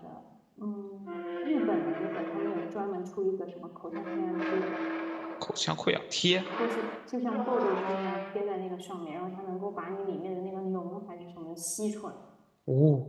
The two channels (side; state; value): both; identical; correlation 1.00